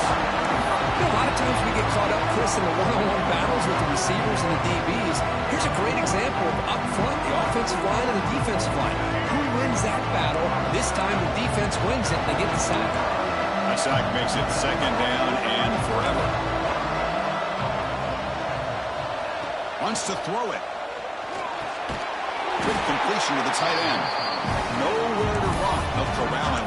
You know, a lot of times we get caught up, Chris, in the one-on-one battles with the receivers and the DBs. Here's a great example of up front, the offensive line and the defensive line. Who wins that battle? This time the defense wins it. They get the sack. The sack makes it 2nd down and forever. Wants to throw it. Good completion to the tight end. Nowhere to run. They'll corral him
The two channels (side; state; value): both; identical; correlation 1.00